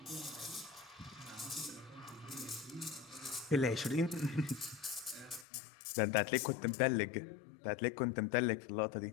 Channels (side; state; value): right; drops out; at 5.5 s